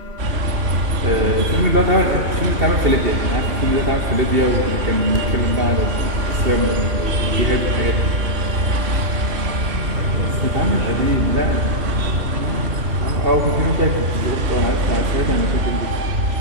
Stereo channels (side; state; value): left; late; 2.7 ms